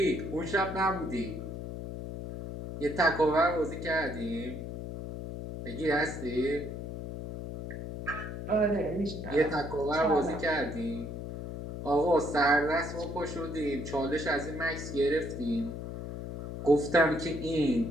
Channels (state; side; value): noise; left; hum, 7 dB below the sound